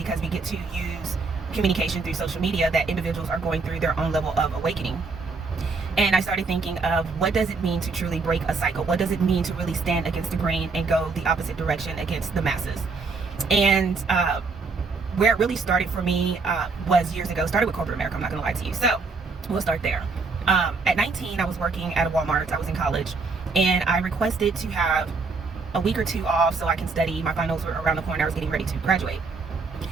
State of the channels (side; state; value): left; quieter; 4.3 dB